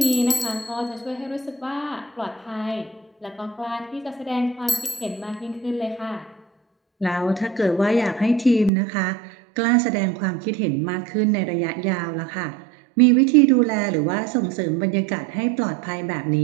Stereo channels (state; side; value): drops out; left; at 8.7 s